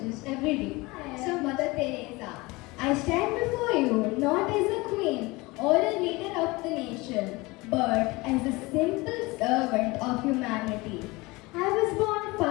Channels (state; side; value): quieter; right; 23.0 dB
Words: every day. So Mother Teresa, I stand before you not as a queen or a leader of the nation, but as a simple servant of humanity. I was born